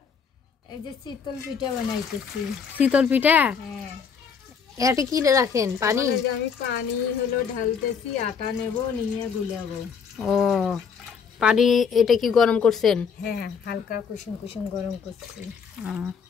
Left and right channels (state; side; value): quieter; right; 6.4 dB